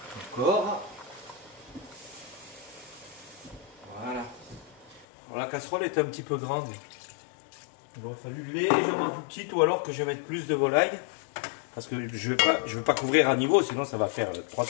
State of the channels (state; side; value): drops out; right; at 5.1 s